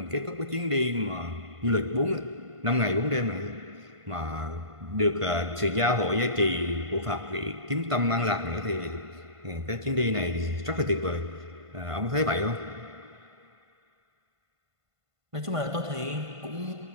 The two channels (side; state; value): left; late; 1.5 ms